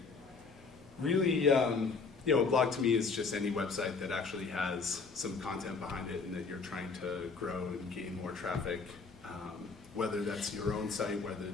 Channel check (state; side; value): quieter; right; 4.7 dB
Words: really, a blog to me is just any website that actually has some content behind it and that you're trying to grow and gain more traffic, whether that's your own site, whether